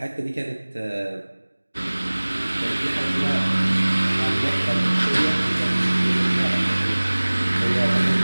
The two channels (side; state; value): both; inverted; correlation -1.00